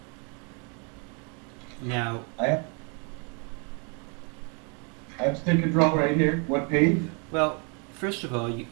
Now, I have stick control right here. What page? well, first of all,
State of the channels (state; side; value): quieter; left; 35.7 dB